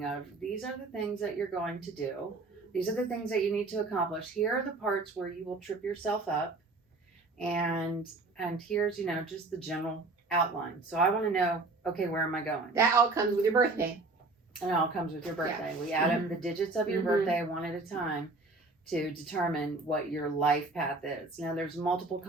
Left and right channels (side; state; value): left; quieter; 3.4 dB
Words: of these are the things that you're going to do. These are the things that you need to accomplish. Here are the parts where you will trip yourself up. And here's, just the general outline. So I want to know, okay, where am I going? That all comes with your birthday. And it all comes with your birthday. Yeah. We add up the digits of your birthday one at a time to determine what your life path is. Now, there's multiple